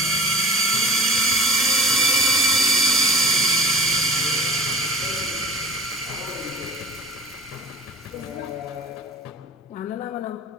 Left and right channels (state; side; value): normal; both; correlation 0.40